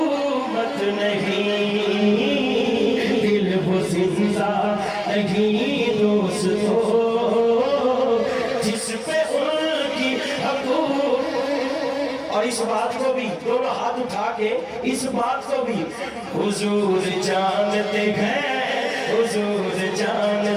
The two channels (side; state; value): both; identical; correlation 1.00